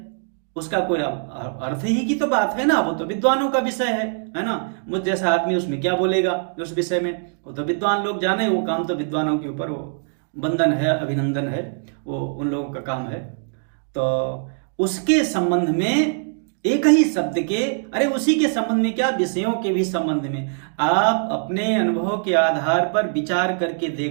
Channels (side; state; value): left; silent; digital silence